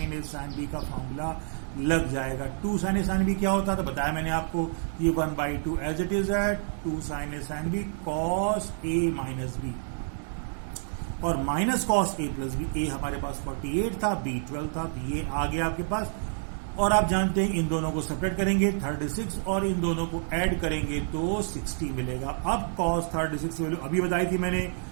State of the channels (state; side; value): silent; left; digital silence